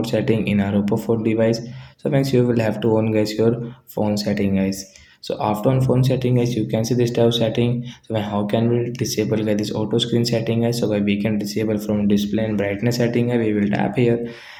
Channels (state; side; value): identical; both; correlation 1.00